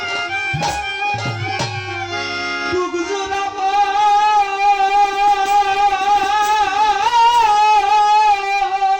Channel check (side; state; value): both; identical; correlation 1.00